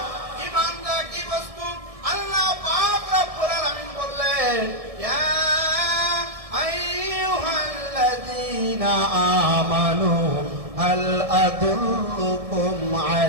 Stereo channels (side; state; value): left; late; 1.6 ms